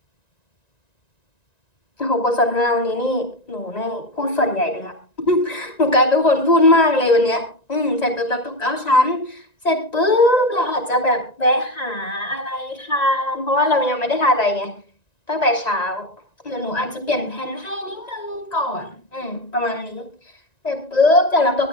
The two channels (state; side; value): late; right; 1.9 ms